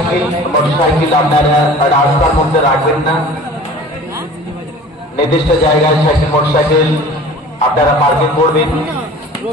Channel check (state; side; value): normal; both; correlation 0.44